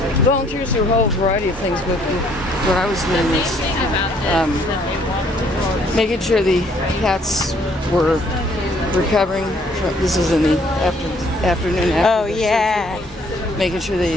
Volunteers do a whole variety of things, but what I was doing was making sure the cats were recovering. This is in the afternoon. Oh, yeah. Surgery, making sure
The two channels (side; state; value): both; normal; correlation 0.64